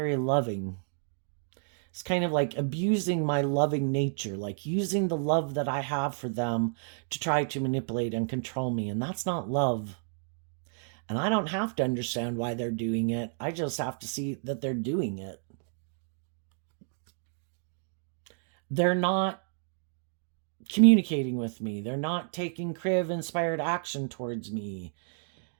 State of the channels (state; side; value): silent; left; digital silence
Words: loving. It's kind of like abusing my loving nature, like using the love that I have for them to try to manipulate and control me. And that's not love. And I don't have to understand why they're doing it. I just have to see that they're doing it. They're not communicating with me. They're not taking Kriv-inspired action towards me.